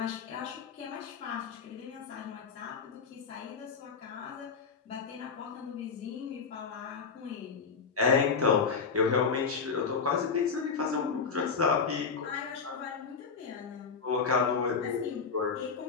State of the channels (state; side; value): quieter; right; 5.5 dB